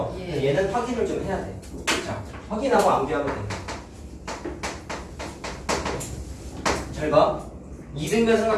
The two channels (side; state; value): both; identical; correlation 1.00